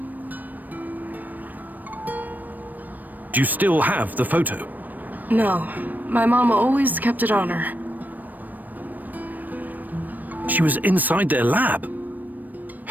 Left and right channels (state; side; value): late; left; 0.086 ms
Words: Do you still have the photo? No. My mom always kept it on her. She was inside their lab.